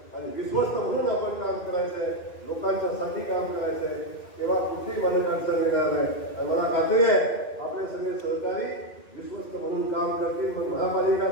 आणि विश्वस्त म्हणून आपण काम करायचंय, लोकांच्या साठी काम करायचंय. तेव्हा कुठली मदत अडचण येणार नाही. आणि मला खात्री आहे आपले सगळे सहकारी विश्वस्त म्हणून काम करतील. मग महापालिका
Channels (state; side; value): late; right; 2.4 ms